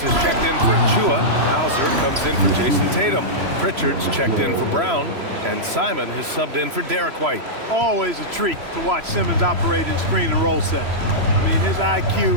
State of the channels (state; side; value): late; left; 3.0 ms